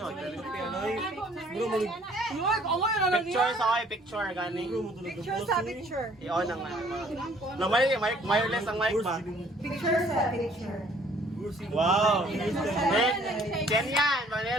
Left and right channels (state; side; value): normal; both; correlation 0.59